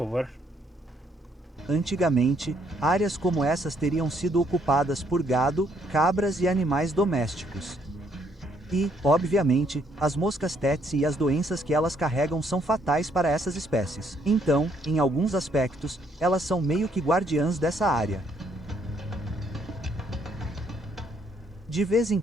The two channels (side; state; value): both; normal; correlation 0.69